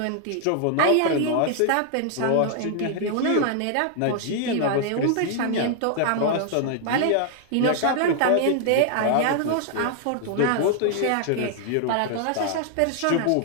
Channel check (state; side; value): different; both; correlation 0.00